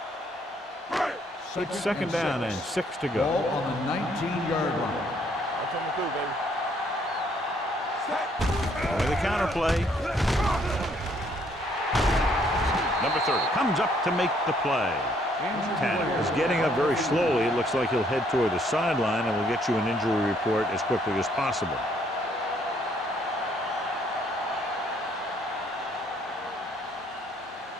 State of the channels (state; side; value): normal; both; correlation 0.67